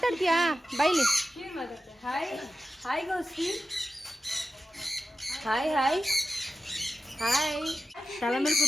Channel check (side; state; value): both; normal; correlation 0.91